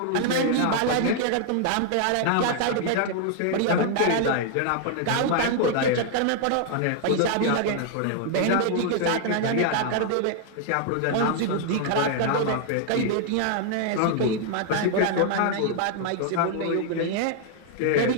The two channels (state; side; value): different; both; correlation -0.01